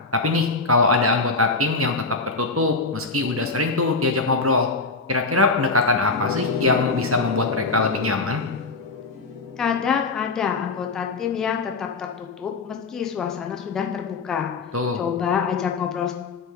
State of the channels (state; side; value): quieter; right; 3.9 dB